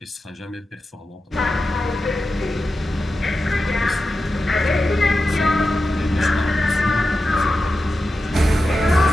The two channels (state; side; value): normal; both; correlation 0.91